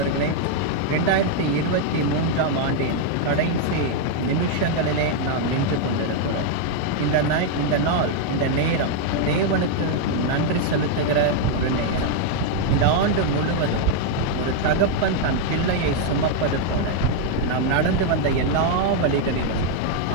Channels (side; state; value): both; different; correlation 0.00